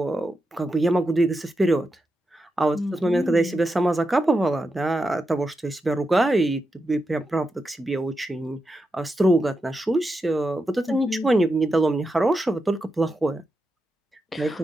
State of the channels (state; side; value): normal; both; correlation 0.87